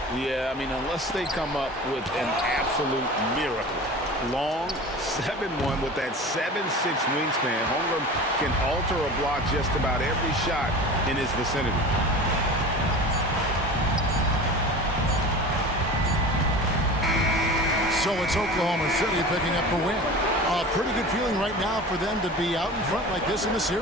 Yeah, I mean, unless they come up with an absolute miracle. Long 7-1 with that 7'6" wingspan. Holmgren can alter or block just about every shot in his vicinity. So it's Oklahoma City picking up the win. A pretty good feeling right now for them to be out in front like this in the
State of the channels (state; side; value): normal; both; correlation 0.35